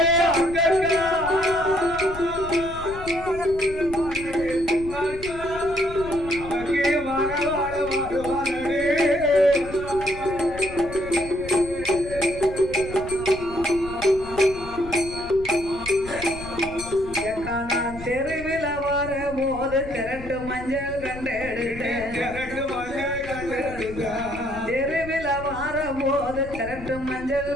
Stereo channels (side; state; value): left; noise; rumble, 13 dB below the sound